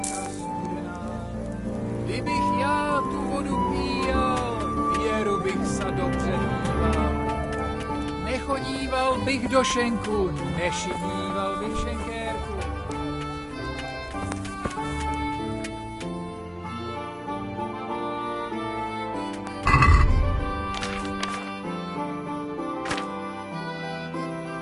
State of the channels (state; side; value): identical; both; correlation 1.00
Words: Kdybych já tu vodu píjal, věru bych se dobře díval. Nechodíval bych do šenku, nešidíval bych šenkérku.